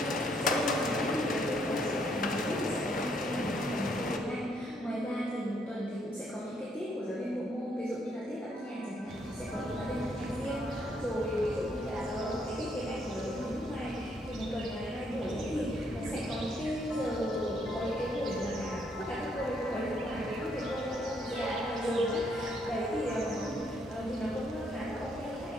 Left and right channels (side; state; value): both; normal; correlation 0.71